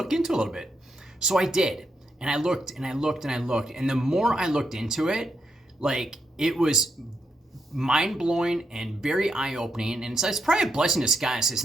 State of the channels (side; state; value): both; normal; correlation 0.80